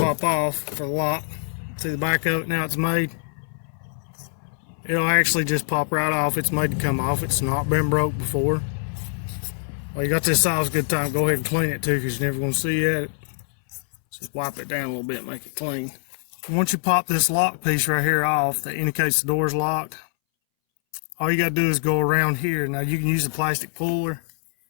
off for the lock. See the back of it now it's made? It'll actually just pop right off. It's made to come off. It's not been broke before. Well, you got this off, it's a good time. Go ahead and clean it too, because you're never going to see it. Just wipe it down a little bit and make it clean. Once you pop this lock piece right here off that indicates the door's locked, all you got to do is go around here. Now you can use a plastic puller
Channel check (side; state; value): right; silent; 63 dB below the other